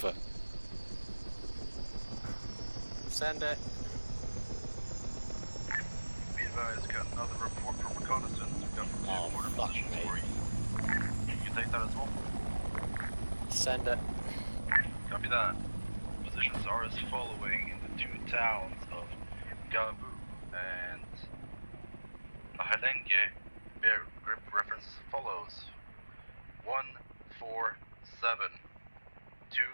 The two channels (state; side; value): inverted; both; correlation -1.00